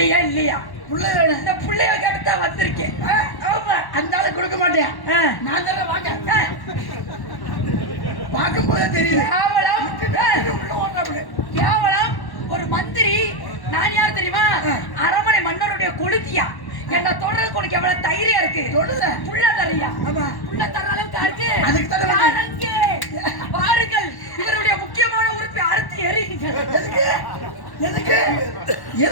இல்லையா? பிள்ளை வேணும். இந்த பிள்ளைய கேட்டுதான் வந்திருக்கேன். ஆமா, அந்த ஆளு கொடுக்க மாட்டேன். நான் தானே வாங்க பார்க்கும் போதே தெரியுது. கேவலம். ஒரு மந்திரி. நான் யார் தெரியுமா? அரமனை மன்னருடைய கொளுத்தியா. என்ன தொடர்றதுக்கு உனக்கு எவ்வளவு தைரியம் இருக்கு? தொடல புள்ள தரையா? ஆமா, புள்ள தர அளவுக்கு இருக்கு. அதுக்கு தானே பாருங்கள், இவருடைய முக்கியமான உறுப்பை அறுத்து எறிங்க. எதுக்கு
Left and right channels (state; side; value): late; right; 1.1 ms